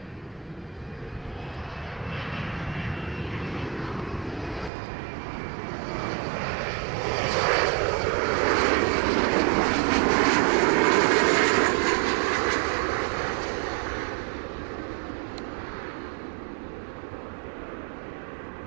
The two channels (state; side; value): drops out; left; at 4.7 s